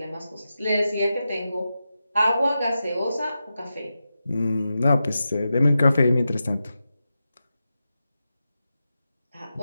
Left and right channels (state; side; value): inverted; both; correlation -0.91